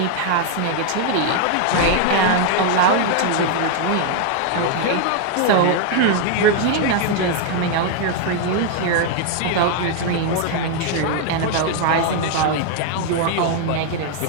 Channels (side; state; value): both; different; correlation 0.00